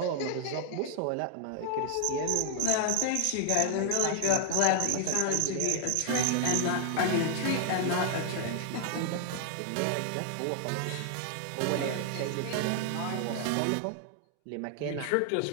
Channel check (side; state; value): both; different; correlation -0.01